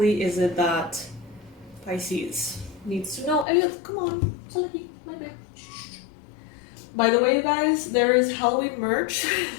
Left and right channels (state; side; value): drops out; right; at 3.5 s